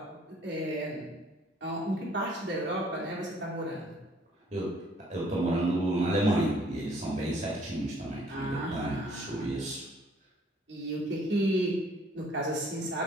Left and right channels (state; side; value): normal; both; correlation 0.60